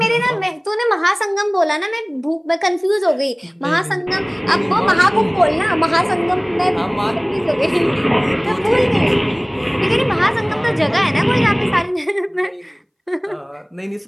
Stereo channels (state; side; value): identical; both; correlation 1.00